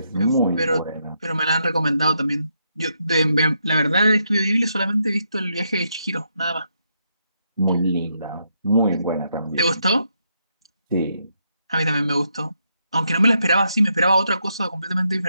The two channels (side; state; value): both; inverted; correlation -0.79